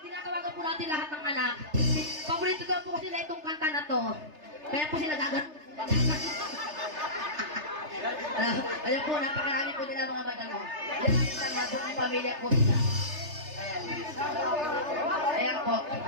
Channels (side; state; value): left; late; 3.3 ms